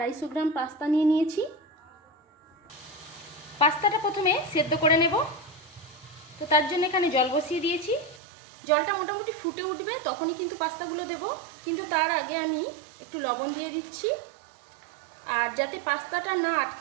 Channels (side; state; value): left; drops out; at 8.2 s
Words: গ্রাম পাস্তা নিয়ে নিয়েছি। পাস্তাটা প্রথমে সেদ্ধ করে নেব। তো তার জন্য এখানে জল বসিয়ে দিয়েছি। জলটা মোটামুটি ফুটে উঠবে, তখনই কিন্তু পাস্তাগুলো দেব। কিন্তু তার আগে আমি একটু লবণ দিয়ে দিচ্ছি, আর যাতে পাস্তাটা না